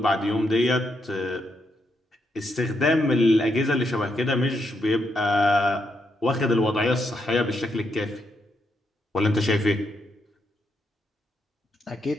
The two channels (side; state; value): both; normal; correlation 0.79